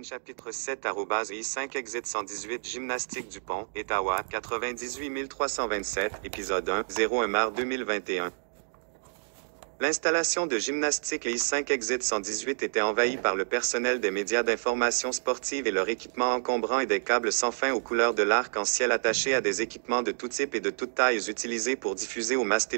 chapitre 7 @I5 exit 118 gymnastique Dupont, Ottawa, 98 327, épisode 1, 01 mars 2021. L'installation de gymnastique I5 exit 118 était envahie par le personnel des médias d'information sportive et leur équipement encombrant et des câbles sans fin aux couleurs de l'arc-en-ciel attachés à des équipements de tout type et de toutes tailles utilisés pour diffuser aux masses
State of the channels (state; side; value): silent; left; digital silence